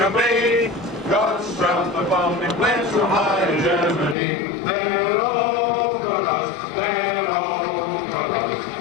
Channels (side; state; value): right; drops out; at 4.2 s